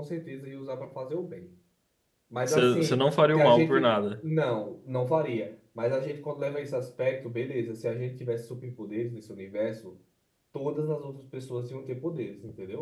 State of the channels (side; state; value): both; identical; correlation 1.00